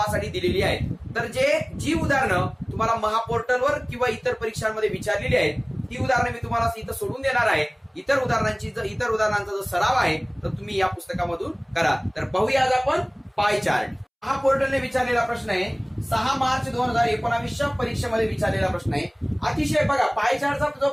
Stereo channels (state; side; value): identical; both; correlation 1.00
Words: दिलेली आहेत। तर जी उदाहरणं तुम्हाला महापोर्टलवर किंवा इतर परीक्षांमध्ये विचारलेली आहेत ती उदाहरणं मी तुम्हाला इथं सोडून देणार आहे। इतर उदाहरणांचा जो सराव आहे तर तुम्ही या पुस्तकामधून करा। तर पाहूया आज आपण पाय चार्ट। महापोर्टलने विचारलेला प्रश्न आहे, 6 मार्च 2019च्या परीक्षेमध्ये विचारलेला प्रश्न आहे। अतिशय बघा, पाय चार्टचा जो